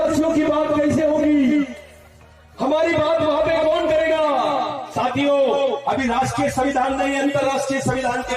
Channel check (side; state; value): both; identical; correlation 1.00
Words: की बात कैसे होगी, हमारी बात वहां पे कौन करेगा। साथियों, अभी राष्ट्रीय संविधान नहीं, अंतरराष्ट्रीय संविधान के